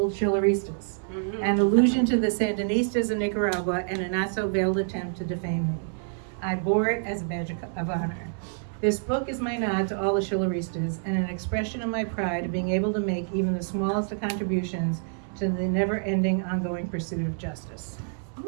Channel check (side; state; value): left; silent; digital silence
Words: Shilleristas, an allusion to the Sandinistas in Nicaragua and a not-so-veiled attempt to defame me. I bore it as a badge of honor. This book is my nod to all the Shilleristas and an expression of my pride of being able to make even the smallest of contributions to the never-ending, ongoing pursuit of justice.